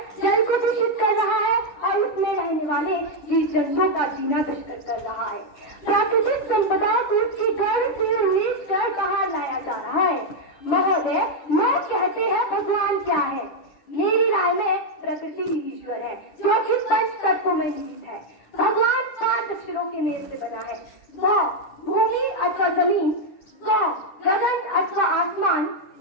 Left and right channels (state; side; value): late; right; 10 ms